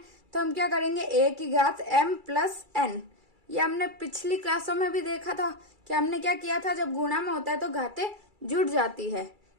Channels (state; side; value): late; left; 2.3 ms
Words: तो हम क्या करेंगे, a की घात m प्लस n। ये हमने पिछली क्लासों में भी देखा था कि हमने क्या किया था, जब गुणा में होता है तो घातें जुड़ जाती है।